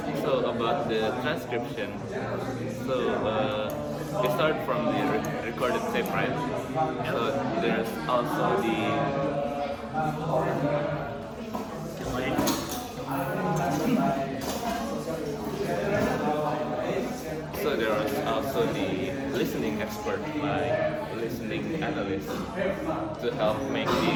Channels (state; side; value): identical; both; correlation 1.00